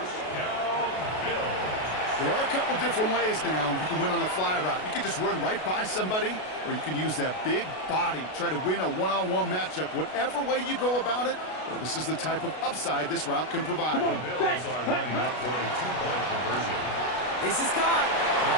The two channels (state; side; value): late; right; 33 ms